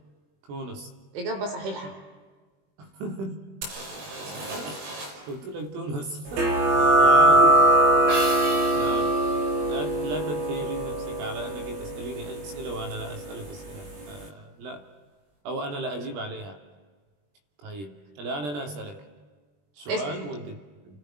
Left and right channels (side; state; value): left; late; 21 ms